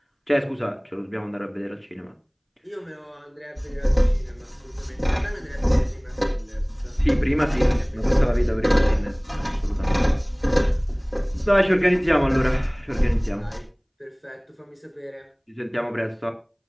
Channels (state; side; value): identical; both; correlation 1.00